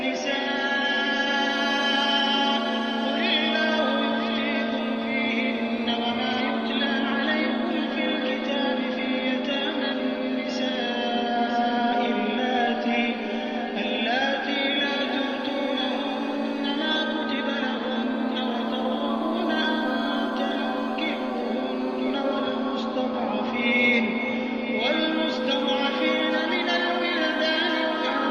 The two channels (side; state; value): both; identical; correlation 1.00